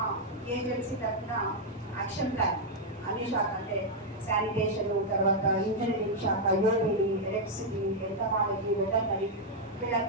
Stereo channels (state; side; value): normal; both; correlation -0.02